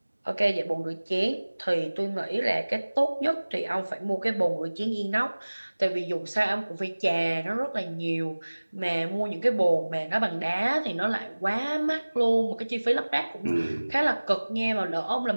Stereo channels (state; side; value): inverted; both; correlation -1.00